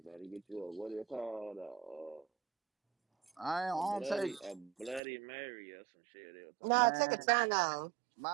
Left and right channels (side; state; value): left; drops out; at 5.0 s